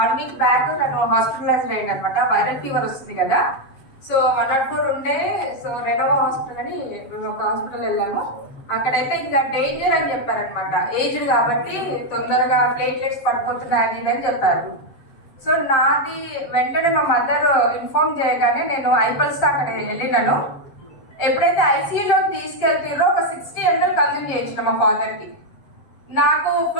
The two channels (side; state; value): right; late; 7.6 ms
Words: 1 week back తను hospitalise అయ్యింది అనమాట. వైరల్ ఫీవర్ వస్తుంది కదా, సో 104 ఉండే. సో రెనోవా హాస్పిటల్ అని ఒక హాస్పిటల్ వెళ్ళాము. అక్కడైతే ఇంకా డేంజర్ అని చెప్పారనమాట. ఏజ్డ్ కాబట్టి తొందరగా ప్లేట్లెట్స్ పడిపోతున్నాయి అది అని చెప్పారు. సో నాది వెంటనే మా మదర్ ఇన్ఫార్మ్ చేయగానే నేను ఐపల్స్ అక్కడ వెళ్ళినాను. ఎప్పుడైతే ఐసీయూలోకి తీసుకెళ్తారో ఒక 60 ml కన్జ్యూమ్ చేయించిన మా ఫాదర్కి. నాకు